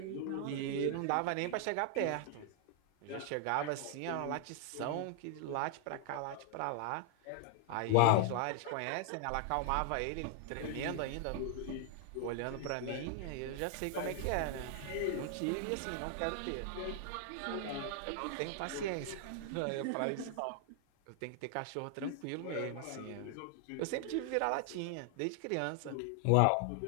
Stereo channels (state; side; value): different; both; correlation 0.00